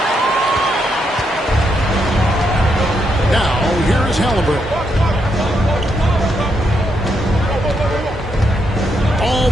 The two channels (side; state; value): both; normal; correlation 0.79